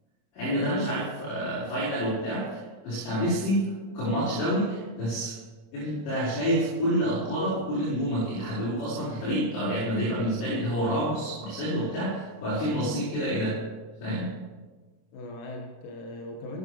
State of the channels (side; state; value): right; late; 26 ms